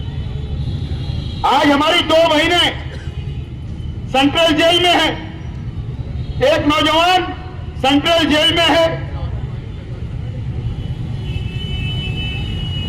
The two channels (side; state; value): both; identical; correlation 1.00